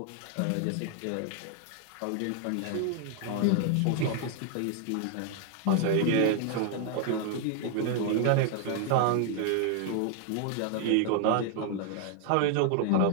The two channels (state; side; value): different; both; correlation 0.00